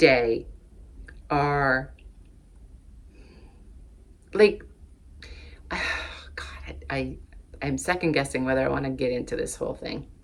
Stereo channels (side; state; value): both; identical; correlation 1.00